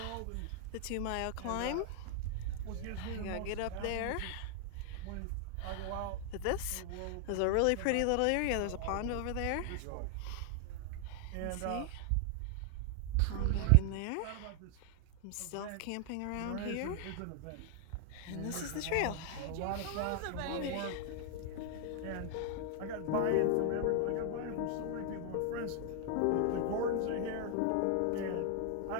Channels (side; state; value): both; different; correlation 0.00